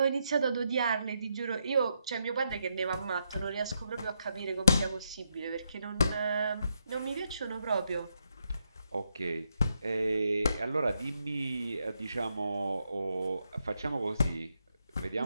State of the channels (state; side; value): inverted; both; correlation -0.80